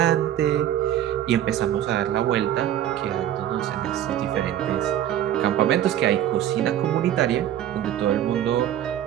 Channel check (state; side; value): quieter; left; 11.3 dB